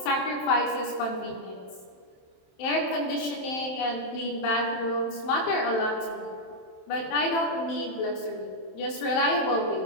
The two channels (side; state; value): right; late; 27 ms